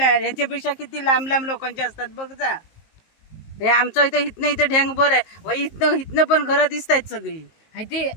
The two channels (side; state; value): right; late; 19 ms